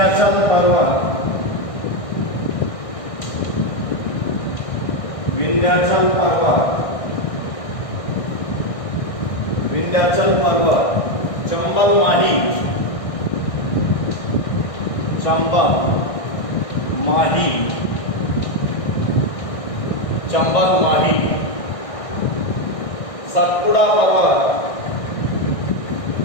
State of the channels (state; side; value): late; right; 1.6 ms